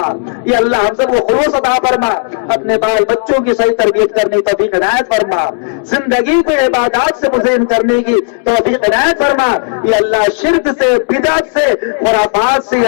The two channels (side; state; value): right; silent; digital silence